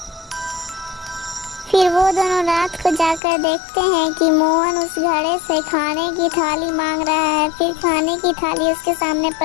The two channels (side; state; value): right; drops out; at 3.2 s